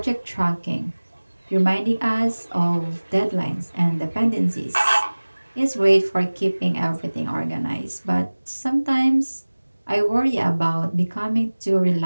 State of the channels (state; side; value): inverted; both; correlation -1.00